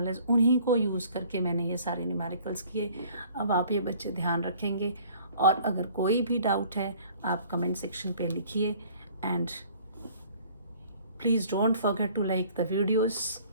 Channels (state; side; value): inverted; both; correlation -0.54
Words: उन्हीं को यूज़ करके मैंने ये सारे न्यूमेरिकल्स किए. अब आप ये बच्चे ध्यान रखेंगे, और अगर कोई भी डाउट है आप कमेंट सेक्शन पे लिखिए. And please don't forget to like the videos.